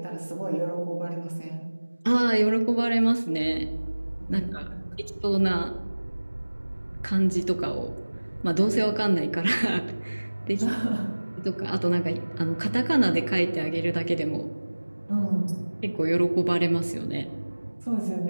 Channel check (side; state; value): both; inverted; correlation -1.00